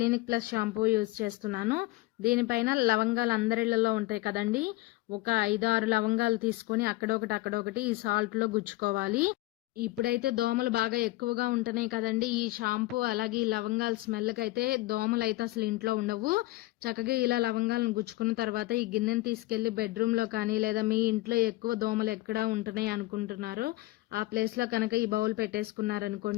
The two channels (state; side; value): quieter; right; 19.3 dB